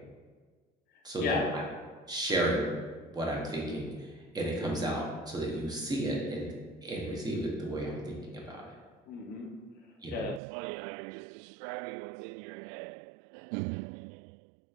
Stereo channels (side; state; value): left; drops out; at 10.4 s